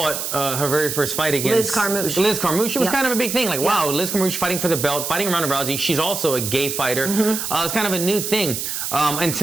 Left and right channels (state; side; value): noise; right; hiss, 4 dB below the sound